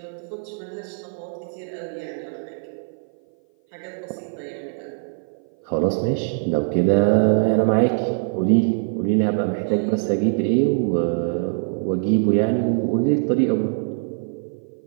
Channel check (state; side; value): silent; left; 57 dB below the other